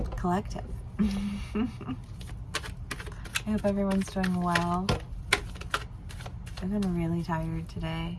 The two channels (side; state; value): both; identical; correlation 1.00